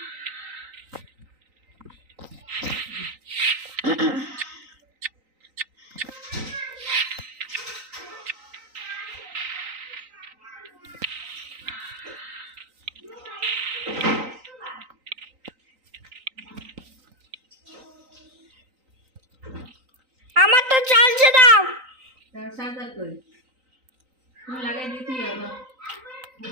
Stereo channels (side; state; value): left; late; 3.9 ms